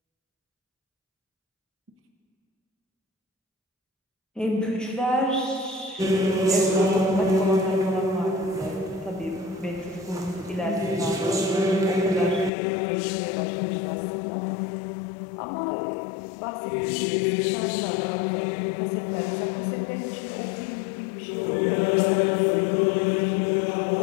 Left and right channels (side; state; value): right; drops out; at 12.5 s